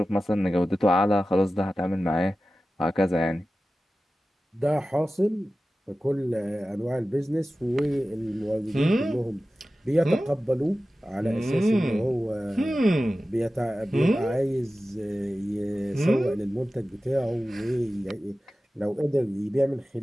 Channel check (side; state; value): both; normal; correlation 0.95